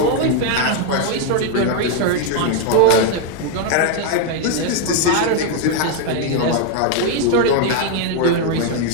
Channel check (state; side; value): different; both; correlation 0.01